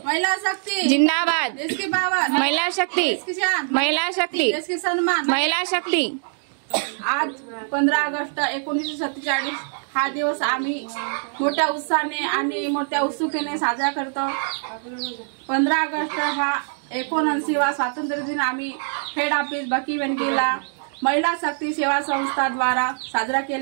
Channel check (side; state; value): left; silent; digital silence